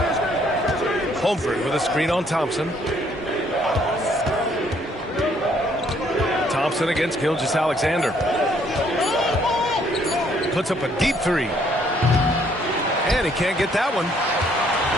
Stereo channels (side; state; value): both; normal; correlation 0.66